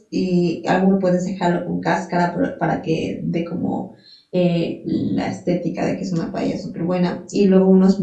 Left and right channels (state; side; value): identical; both; correlation 1.00